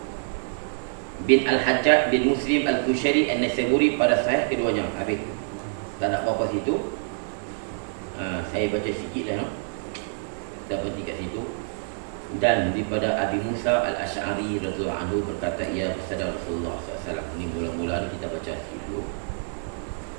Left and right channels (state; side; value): silent; left; 61 dB below the other